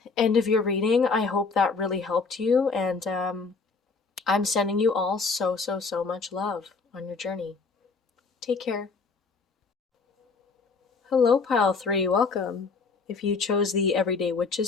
end of your reading. I hope that really helped you, and I'm sending you all so, so, so much love on your journey. Take care. Hello, pile 3, welcome. If you chose the Everyday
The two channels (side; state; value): right; quieter; 4.5 dB